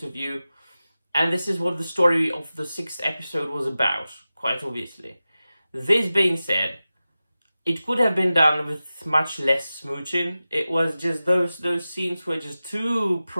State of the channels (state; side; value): inverted; both; correlation -0.95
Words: of view, and this is what the story of the 6th episode was about, quite obviously. This being said, it could have been done with much less smooching. It was just those scenes were just too